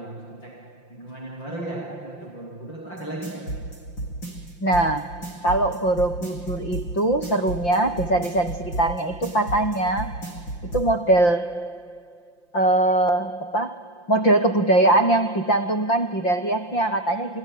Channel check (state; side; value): late; right; 5.8 ms